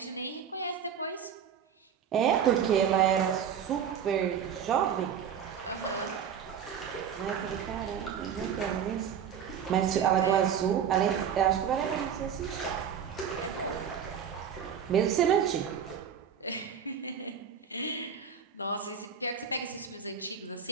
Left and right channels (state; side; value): quieter; left; 8.0 dB